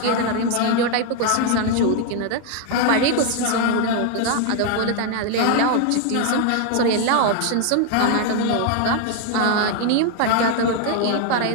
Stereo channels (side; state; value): both; different; correlation 0.00